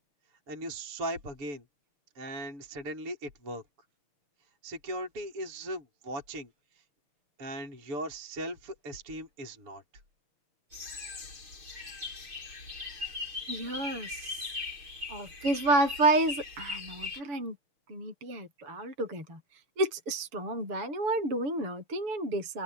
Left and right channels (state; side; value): late; left; 6.9 ms